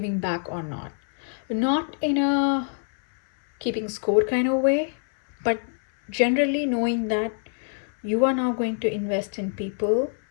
back or not. Not in a keeping score kind of way, but generally knowing that you are now going to invest in people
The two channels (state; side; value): silent; right; 62 dB below the other